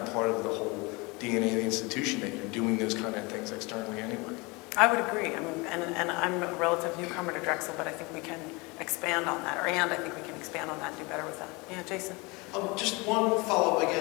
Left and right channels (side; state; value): right; quieter; 26.3 dB